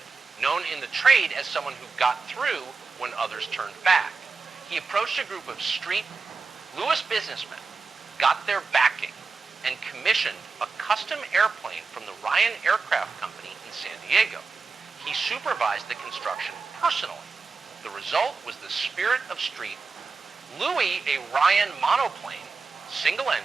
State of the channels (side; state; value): left; quieter; 4.5 dB